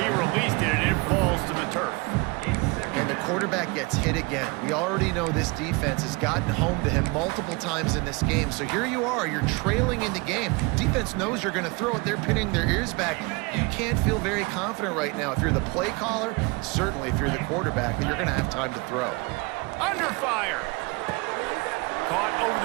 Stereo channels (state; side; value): quieter; left; 27.3 dB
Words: released it, and it falls to the turf. And the quarterback gets hit again. We already know this defense has gotten home to him multiple times in this game. So here you are, you're trailing in the game. Defense knows you're going to throw it. They're pinning their ears back. You can't feel very confident right now. If you're the play caller, certainly if you're the quarterback, that you're going to have time to throw. Under fire. Caught